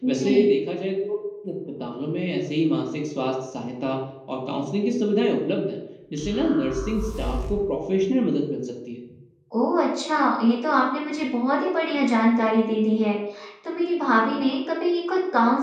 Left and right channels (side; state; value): both; identical; correlation 1.00